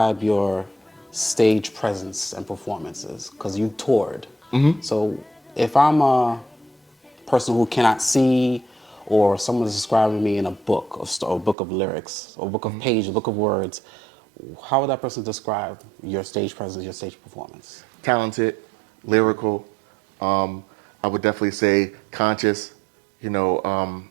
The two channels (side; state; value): left; drops out; at 11.6 s